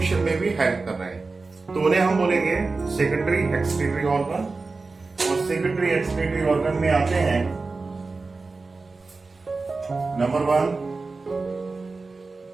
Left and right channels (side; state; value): left; quieter; 3.9 dB